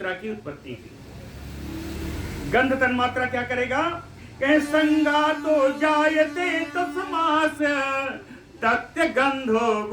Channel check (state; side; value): identical; both; correlation 1.00